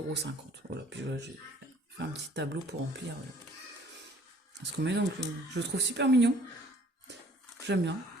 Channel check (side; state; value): both; normal; correlation 0.56